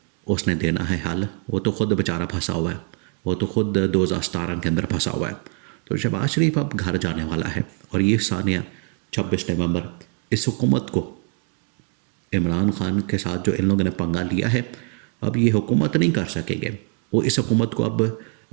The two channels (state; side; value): quieter; left; 39.3 dB